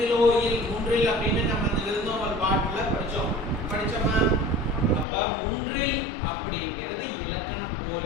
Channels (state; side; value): drops out; right; at 5.1 s